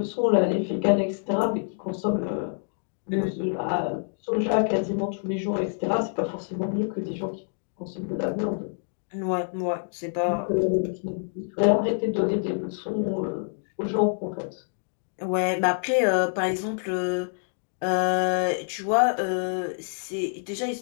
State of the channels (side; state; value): right; silent; digital silence